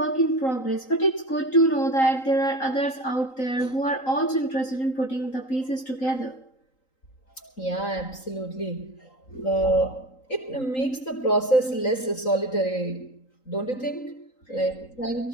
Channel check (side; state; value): right; late; 3.9 ms